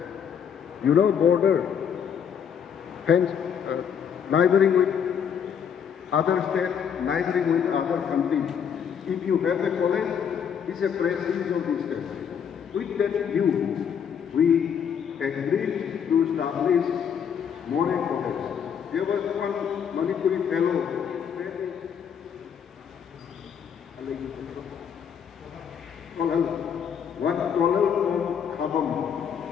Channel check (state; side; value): quieter; right; 7.7 dB